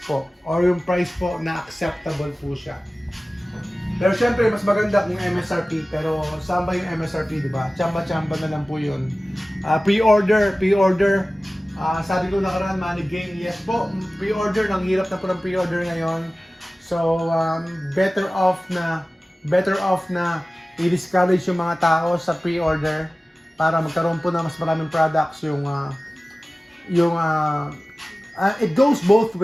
po. Or yung price po na acceptable po siya. Pero syempre, mas maganda kung MSRP. Pero saan ba yung MSRP, di ba? Chamba-chamba na lang po yun. Pre-order. Sabi ko nakaraan, Money Game. Yes po, pre-order. Nang hirap na po ng pre-order ngayon. So, better off na i-discourage yung mga tao sa pre-order para magkaroon po na mas maraming products it goes both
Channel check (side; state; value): both; normal; correlation 0.97